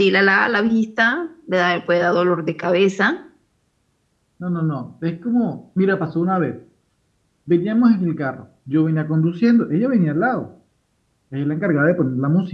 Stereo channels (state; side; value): identical; both; correlation 1.00